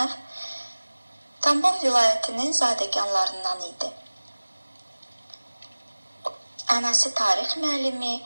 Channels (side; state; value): both; inverted; correlation -1.00